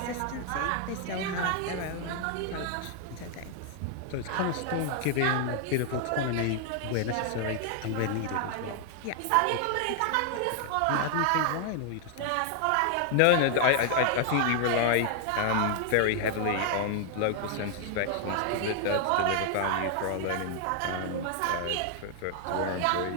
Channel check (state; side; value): different; both; correlation 0.00